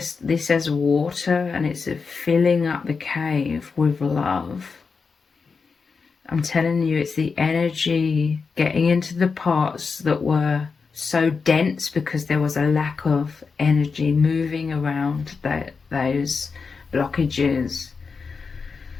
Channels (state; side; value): quieter; right; 5.0 dB